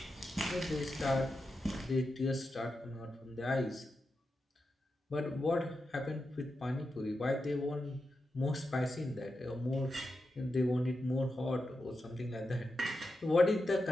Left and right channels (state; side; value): normal; both; correlation 0.89